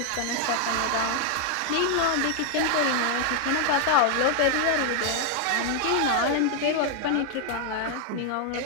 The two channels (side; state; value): both; different; correlation 0.00